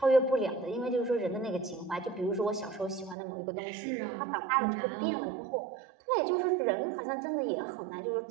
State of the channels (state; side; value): drops out; left; at 3.2 s